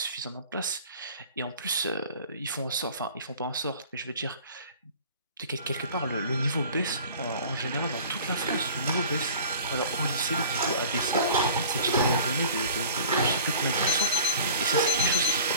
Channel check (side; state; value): both; inverted; correlation -0.44